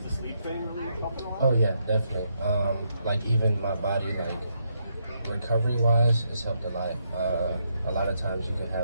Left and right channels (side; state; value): both; inverted; correlation -0.78